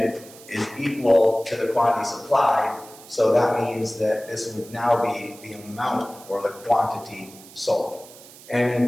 is equal to the quantity supplied, so that means that this would now be the amount or the quantity sold. And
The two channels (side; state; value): right; noise; hiss, 20 dB below the sound